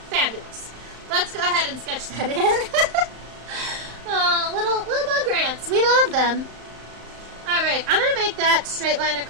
Fabulous. Let's go ahead and sketch that in. Little bug ants. We love them. Alright, I'm going to make that straight line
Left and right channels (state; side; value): late; left; 35 ms